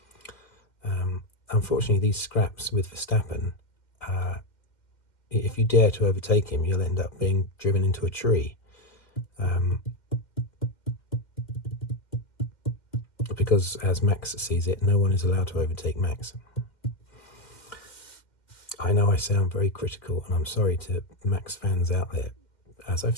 Unfortunately, these scraps with Verstappen, if you dare to overtake him, you'll end up being driven into a tree. Because, as Max sees it, no one is allowed to overtake Max. I know I sound very critical, and I'm sorry to Max fans out there. As I've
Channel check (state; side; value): late; right; 2.1 ms